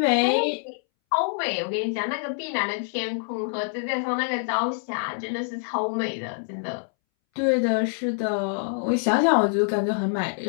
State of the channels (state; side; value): silent; right; 61 dB below the other